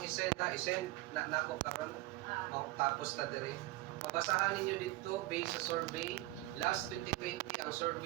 isend na nako karon tapos ta dire. Mabasahan ninyo dito based sa survey, last 2020 ang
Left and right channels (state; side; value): quieter; left; 19.2 dB